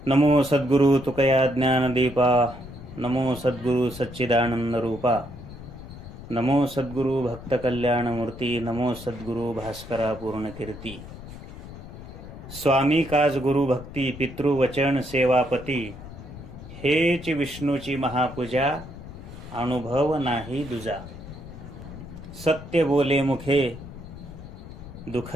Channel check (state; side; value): noise; left; rumble, 13 dB below the sound